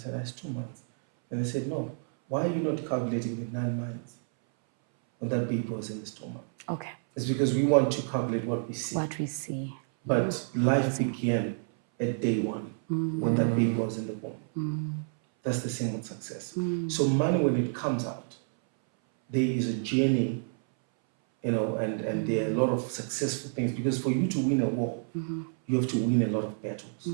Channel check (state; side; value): silent; left; 58 dB below the other